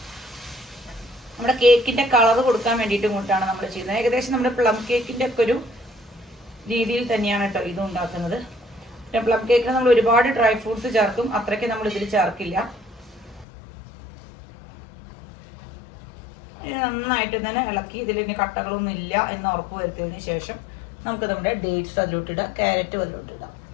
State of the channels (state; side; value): drops out; right; at 13.5 s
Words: നമ്മുടെ കേക്കിന്റെ കളർ കൊടുക്കാൻ വേണ്ടിയിട്ട് കൂട്ടാണ് നമ്മൾ ചെയ്യുന്നത്. ഏകദേശം നമ്മുടെ പ്ലം കേക്കിന്റെ ഒക്കെ ഒരു രീതിയിൽ തന്നെയാണ് കേട്ടോ ഇത് ഉണ്ടാക്കുന്നത്. പ്ലം കേക്കിന് നമ്മൾ ഒരുപാട് ഡ്രൈ ഫ്രൂട്ട്സ് ചേർക്കും, അത്രയ്ക്ക് നമ്മൾ ഇതിൽ ചേർക്കില്ല. നന്നായിട്ട് തന്നെ ഇളക്കി ഇതിൽ ഇനി കട്ടകളൊന്നും ഇല്ല എന്ന് ഉറപ്പ് വരുത്തിയതിനു ശേഷം നമുക്ക് നമ്മുടെ ഡേറ്റ്സ് അതിലോട്ടിടാം, ക്യാരറ്റും അതിലോട്ടിടാം.